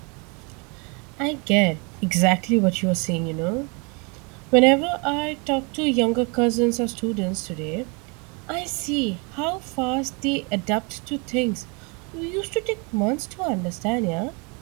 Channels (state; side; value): quieter; left; 32.1 dB